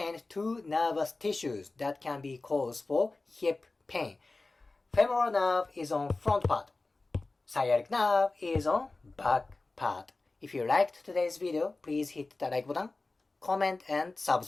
two nervous tissues that can be cause for hip pain. Femoral nerve is on front part. Sciatic nerve is on back part. If you liked today's video, please hit the like button, comment and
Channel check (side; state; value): right; quieter; 3.4 dB